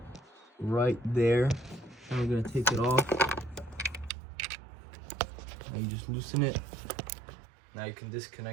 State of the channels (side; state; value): left; drops out; at 4.1 s